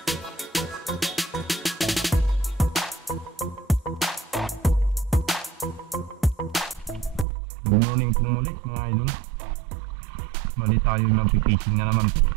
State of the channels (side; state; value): left; drops out; at 7.2 s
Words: Good morning po muli mga idol. Mali tayo magpipising na naman po.